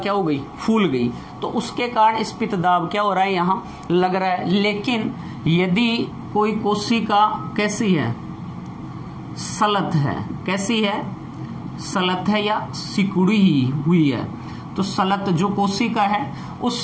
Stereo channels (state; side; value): identical; both; correlation 1.00